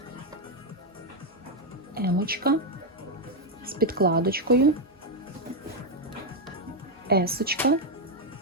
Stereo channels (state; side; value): normal; both; correlation 0.03